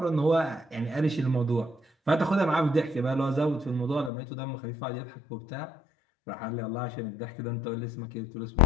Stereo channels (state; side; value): drops out; right; at 4.1 s